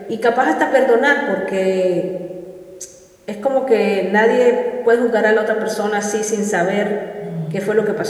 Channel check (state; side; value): identical; both; correlation 1.00